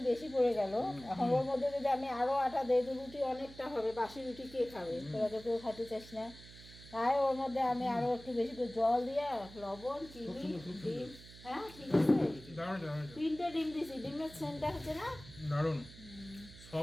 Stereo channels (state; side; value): noise; right; hum, 18 dB below the sound